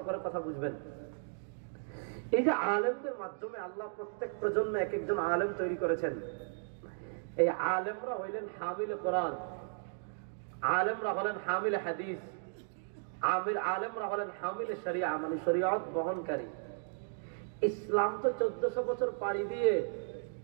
করে কথা বুঝবেন। এই যে আলেমদের মাধ্যমে আল্লাহ প্রত্যেক প্রজন্মে এক একজন আলেম তৈরি করেছেন। এই আলেমরা হইলেন হামিল কোরআন, আলেমরা হলেন হামিল হাদিস, আলেমরা হলেন হামিল শরিয়া, মানে শরিয়ত বহনকারী। ইসলাম তো 1400 বছর পাড়ি দিয়ে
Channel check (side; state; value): left; silent; digital silence